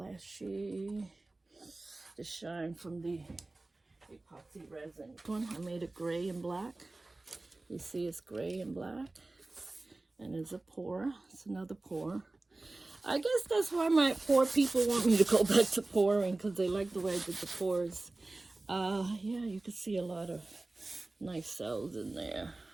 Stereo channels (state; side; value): quieter; left; 3.0 dB